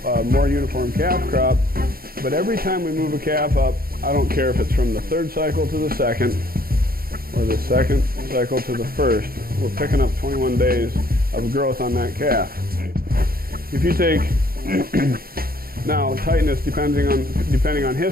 more uniform calf crop, but every time we move a calf up, I don't care if it's from the third cycle to the second or the second cycle to the first, we're picking up 21 days of growth on that calf. If you take now tightness, depending on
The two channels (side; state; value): left; late; 0.43 ms